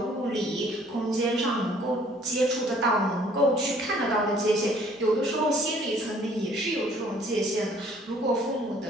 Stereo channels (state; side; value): normal; both; correlation 0.58